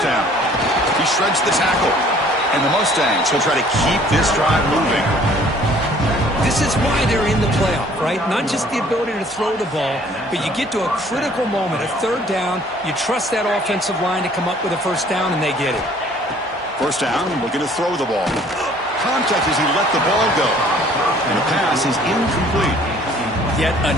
down. He shreds the tackle. And the Mustangs will try to keep this drive moving. This is why they're in the playoff, right? Not just the ability to throw the ball, but you get to a critical moment, a third down, you trust that offensive line to come up with a first down, and they get it. First down, looking to throw the ball. Contact as he let the ball go. And the pass is incomplete. Yet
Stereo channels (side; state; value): both; normal; correlation 0.55